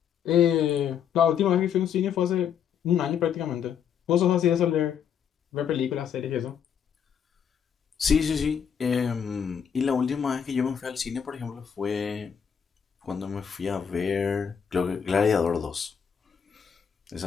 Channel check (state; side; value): quieter; right; 7.8 dB